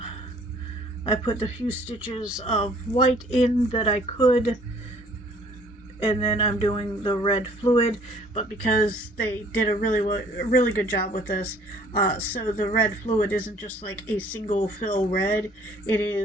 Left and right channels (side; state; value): both; normal; correlation 0.57